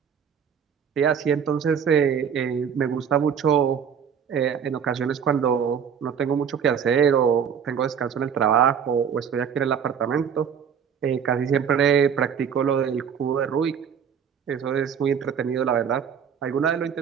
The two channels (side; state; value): left; quieter; 7.5 dB